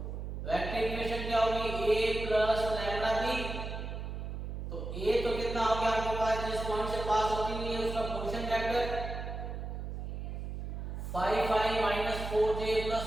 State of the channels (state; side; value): noise; right; hum, 6 dB below the sound